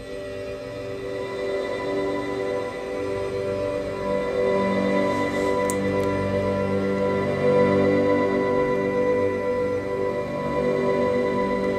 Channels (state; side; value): identical; both; correlation 1.00